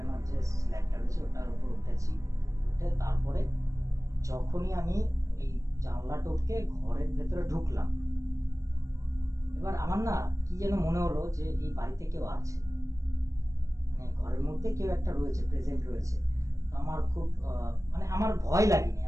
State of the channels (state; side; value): late; left; 0.15 ms